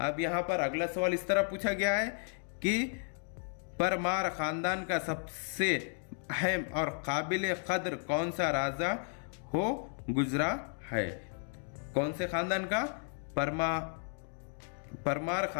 यहाँ पर अगला सवाल इस तरह पूछा गया है कि परमार खानदान का सबसे अहम और काबिल कद्र कौन सा राजा हो गुजरा है? कौन से खानदान का? परमार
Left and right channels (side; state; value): right; silent; 55 dB below the other